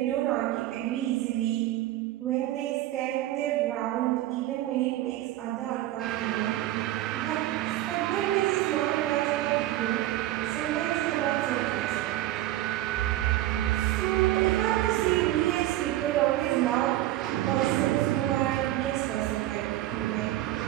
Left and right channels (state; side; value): quieter; left; 14.9 dB